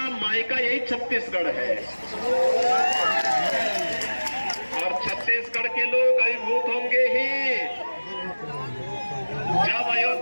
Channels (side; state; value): both; inverted; correlation -1.00